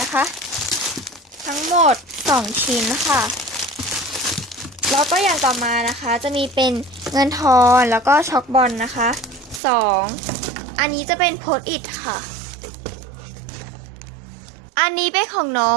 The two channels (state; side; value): drops out; left; at 9.6 s